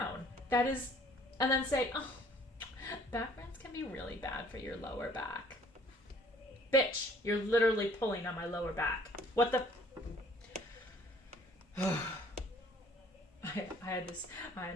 And then say, oh, back bends can be really bad for your lower back. Bitch, you're literally pulling on my lower back. What the? I had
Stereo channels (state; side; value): normal; both; correlation 0.57